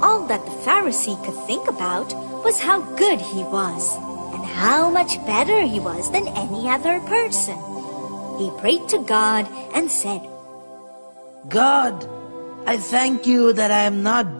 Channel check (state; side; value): inverted; both; correlation -1.00